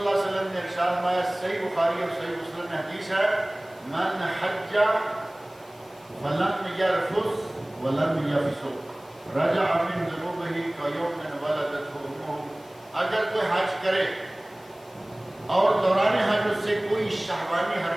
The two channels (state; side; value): noise; left; hiss, 27 dB below the sound